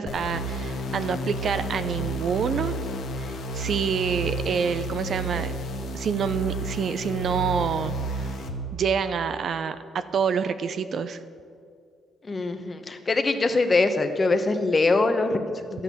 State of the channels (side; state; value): both; normal; correlation 0.71